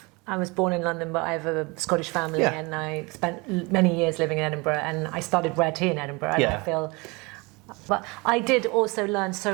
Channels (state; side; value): quieter; left; 26.5 dB